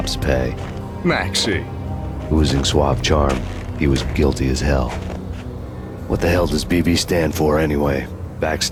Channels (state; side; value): identical; both; correlation 1.00